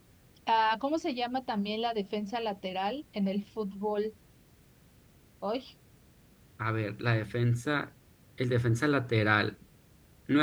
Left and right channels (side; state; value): both; identical; correlation 1.00